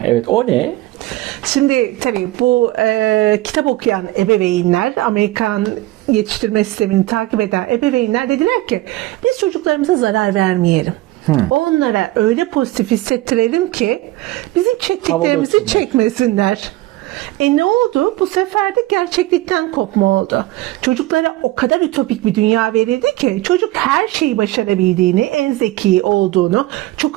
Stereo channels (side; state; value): left; quieter; 17.5 dB